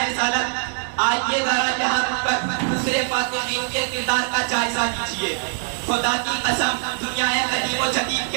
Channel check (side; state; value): left; silent; digital silence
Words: آئیے ذرا یہاں پر دوسرے فاتحین کے کردار کا جائزہ لیجئے۔ خدا کی قسم، دنیا قدیم و جدید